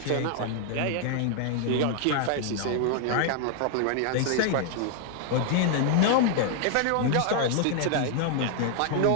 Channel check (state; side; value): different; both; correlation 0.00